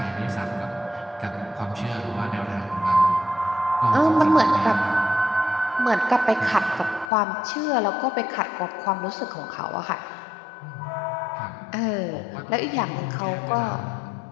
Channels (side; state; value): right; drops out; at 7.1 s